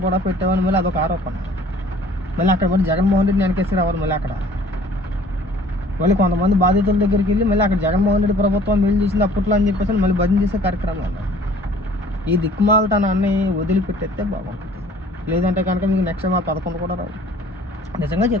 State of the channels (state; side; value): normal; both; correlation 0.53